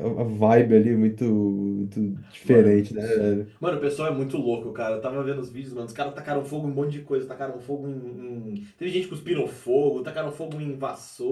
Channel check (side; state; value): both; identical; correlation 1.00